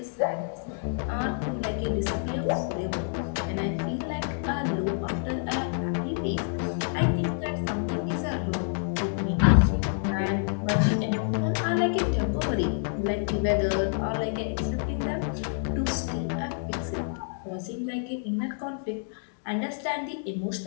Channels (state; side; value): silent; right; digital silence